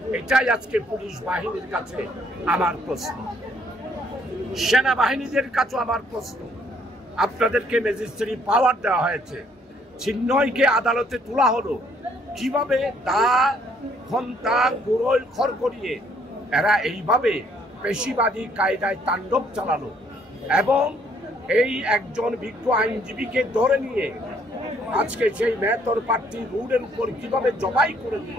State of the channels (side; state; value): both; normal; correlation 0.66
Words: এটাই আজকে পুলিশ বাহিনীর কাছে আমার প্রশ্ন, সেনাবাহিনীদের কাছে আমার প্রশ্ন। আপনাদেরকে ম্যাজিস্ট্রেট পাওয়ার দেওয়া হয়েছে, চিহ্নয়কে আদালতে তোলা হলো, কিভাবে দা ঘন্টা গুড়োল খড় করিয়ে এরা এইভাবে পেশিবাদী কায়দায় তাণ্ডব চালালো এবং এই একজন বিজ্ঞ আইনজীবীকে ধরে নিয়ে আজকে সেই মেহতর প্রার্থী রোডের উপর কিভাবে জবাই করে